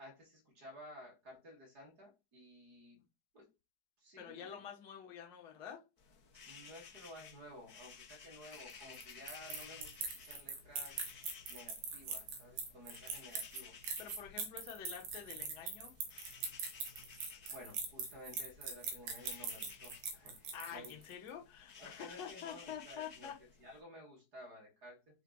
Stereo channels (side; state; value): left; late; 4.7 ms